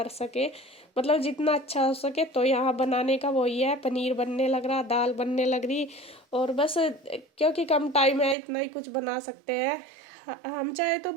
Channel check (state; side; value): drops out; left; at 8.3 s